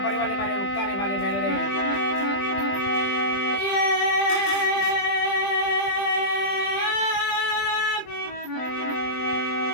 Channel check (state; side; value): late; right; 20 ms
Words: પરિવારને મારે ઉક્તાને મારે મેલડી